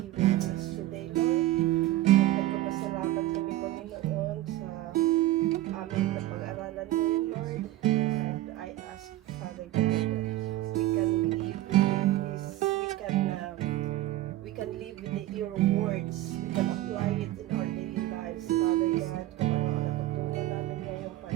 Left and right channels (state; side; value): quieter; left; 15.5 dB